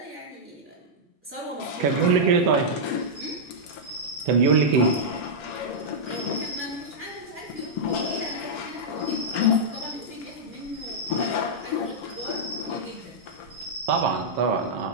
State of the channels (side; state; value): both; normal; correlation -0.09